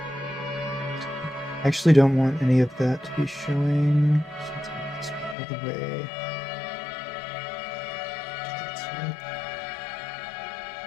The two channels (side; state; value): right; drops out; at 5.4 s